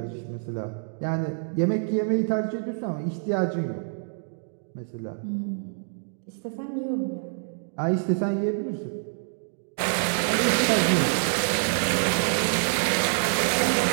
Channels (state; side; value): silent; left; digital silence